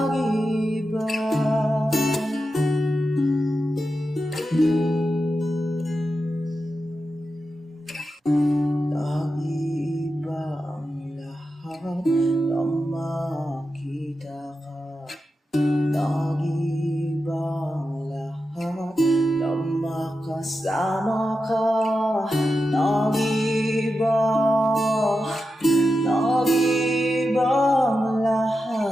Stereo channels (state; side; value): normal; both; correlation 0.90